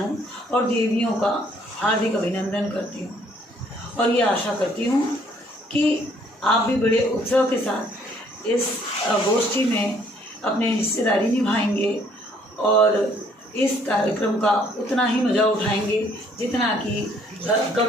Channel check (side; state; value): both; normal; correlation 0.63